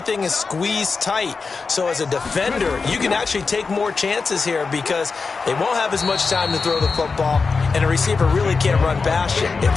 is squeezed tight. So as a defender, you can actually take more chances here because they won't have as much time to throw the football, and a receiver really can't run past you. If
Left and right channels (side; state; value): right; quieter; 4.6 dB